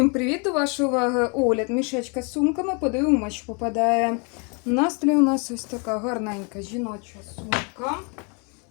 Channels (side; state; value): right; quieter; 34.7 dB